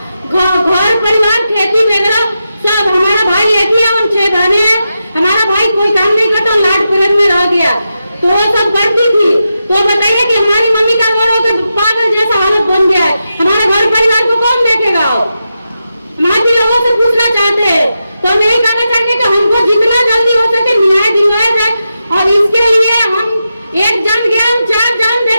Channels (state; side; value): inverted; both; correlation -0.89